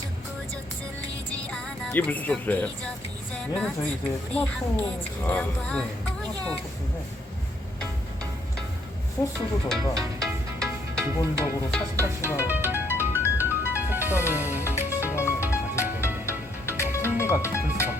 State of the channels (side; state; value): both; normal; correlation 0.70